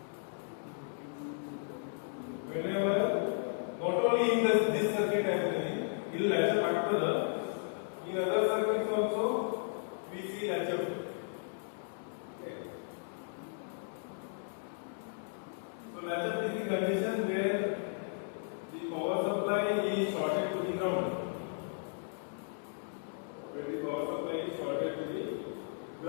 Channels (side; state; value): right; silent; digital silence